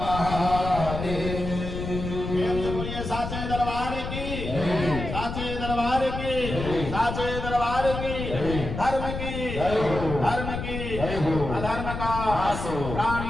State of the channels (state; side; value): noise; left; rumble, 6 dB below the sound